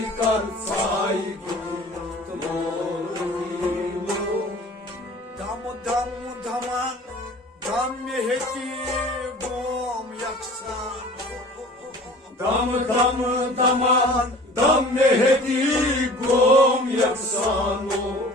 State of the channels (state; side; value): normal; both; correlation 0.44